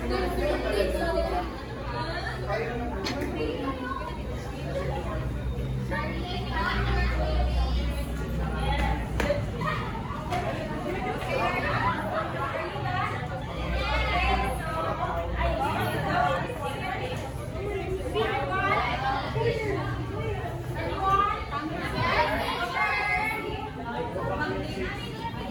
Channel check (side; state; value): both; identical; correlation 1.00